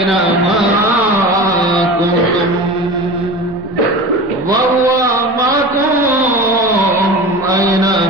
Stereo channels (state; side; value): normal; both; correlation 0.33